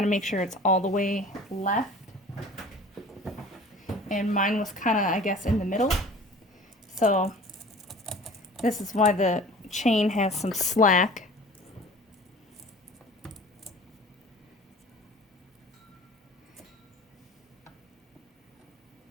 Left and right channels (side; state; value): both; normal; correlation 0.44